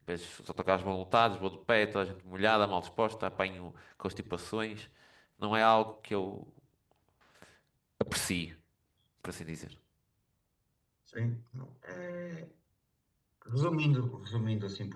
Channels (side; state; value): both; identical; correlation 1.00